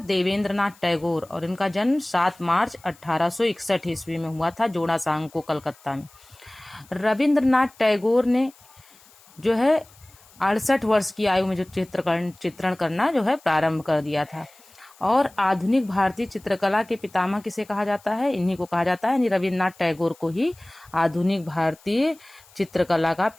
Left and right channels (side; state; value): left; noise; hiss, 27 dB below the sound